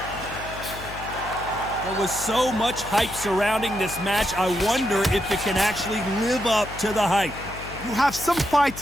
There was so much hype surrounding this match, I wonder if it can actually live up to the hype. You have some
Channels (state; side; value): noise; left; hum, 13 dB below the sound